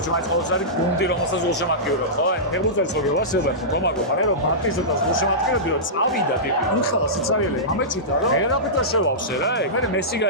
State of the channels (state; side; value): normal; both; correlation -0.17